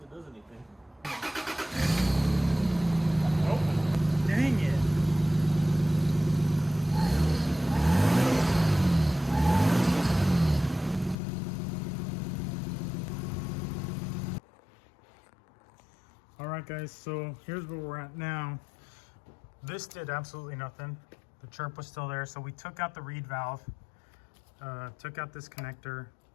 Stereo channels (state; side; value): drops out; right; at 11.2 s